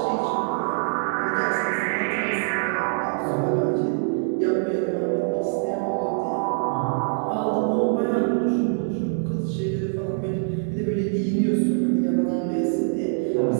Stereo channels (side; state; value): left; silent; digital silence